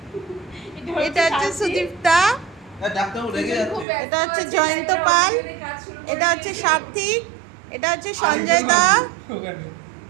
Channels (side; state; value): left; drops out; at 3.9 s